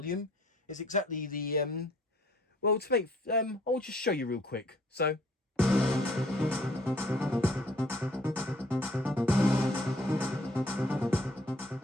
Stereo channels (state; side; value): normal; both; correlation 0.59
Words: It's exactly the, well, to make, I'll just show you real quick. So.